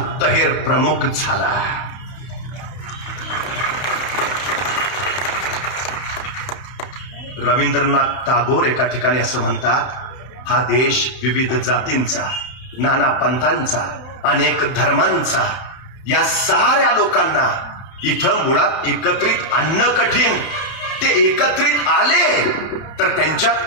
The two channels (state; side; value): late; right; 31 ms